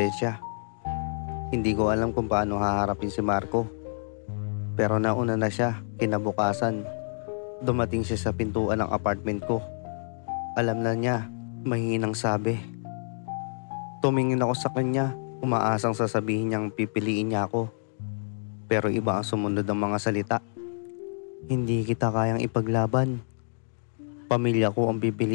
Hindi ko alam kung paano haharapin si Marco. Pero nauna na siya, kinabukasan. Dumating siya sa pintuan ng apartment ko. Alam na niya, mahinang sabi. Tumingin ako sa kanya, umaasang sasabihin niyang pipiliin niya ako. Pero iba ang sumunod ng mga salita. Hindi kita kayang ipaglaban. Pamilya ko ang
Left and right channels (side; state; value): right; silent; digital silence